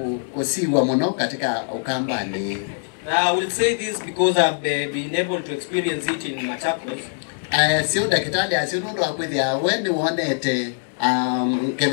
kusiwa muno katika Ukambani. I will say this because I've been able to experience it in Machakos. Sio dakitali asinundo akwithia wende wonete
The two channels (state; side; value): silent; right; digital silence